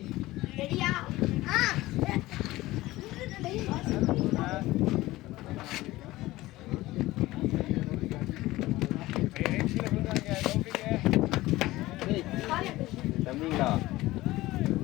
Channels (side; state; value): right; quieter; 18.0 dB